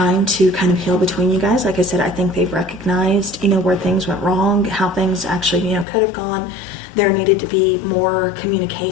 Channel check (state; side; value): drops out; right; at 5.9 s